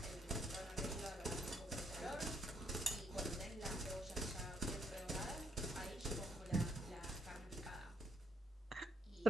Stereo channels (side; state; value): both; normal; correlation 0.76